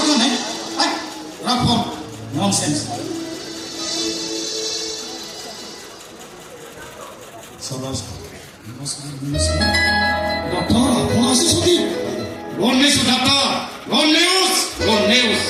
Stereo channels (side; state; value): both; identical; correlation 1.00